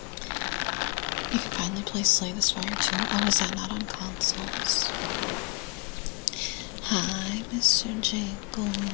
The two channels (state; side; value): quieter; right; 28.6 dB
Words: You can finally play Slay the Spire too. Oh, is that not on consoles? Hi, Mr.